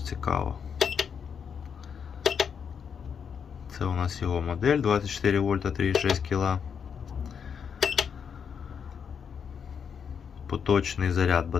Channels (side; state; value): right; quieter; 7.0 dB